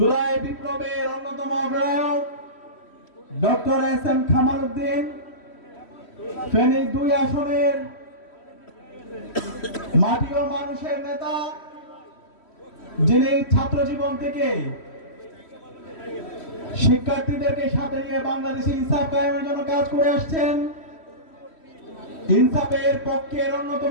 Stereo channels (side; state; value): right; late; 3.1 ms